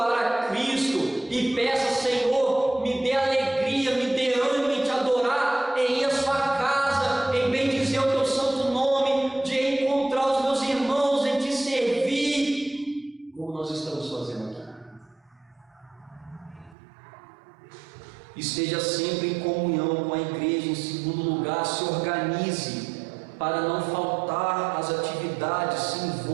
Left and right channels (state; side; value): drops out; left; at 16.8 s